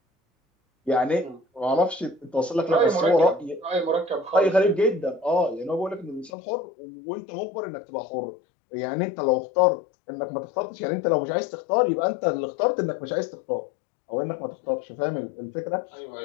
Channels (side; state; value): right; drops out; at 6.3 s